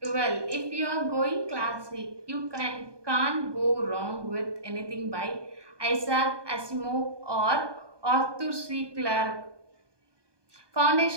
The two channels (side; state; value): left; late; 1.2 ms